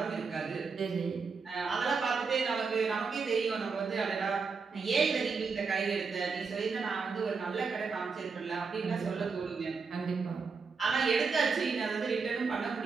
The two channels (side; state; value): left; quieter; 5.0 dB